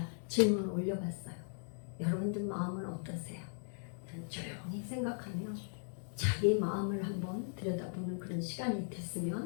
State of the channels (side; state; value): right; silent; digital silence